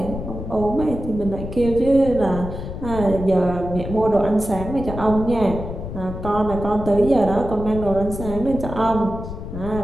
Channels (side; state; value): left; noise; rumble, 8 dB below the sound